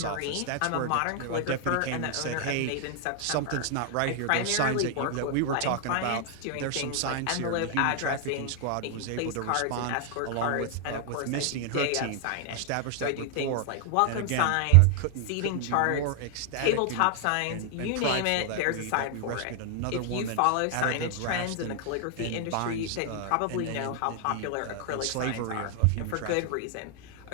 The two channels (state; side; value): different; both; correlation 0.00